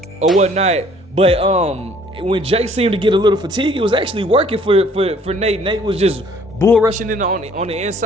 or whatnot, but when Jake seemed to get a little fatigued, it was actually working for Nate. Nate was just bull rushing in on the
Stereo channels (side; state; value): both; normal; correlation 0.58